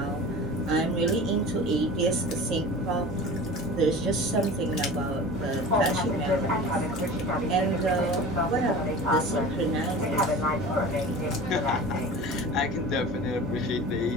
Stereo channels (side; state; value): right; noise; hum, 13 dB below the sound